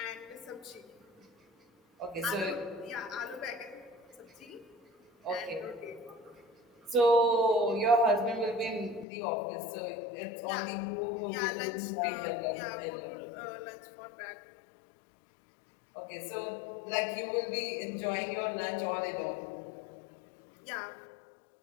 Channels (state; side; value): drops out; right; at 9.1 s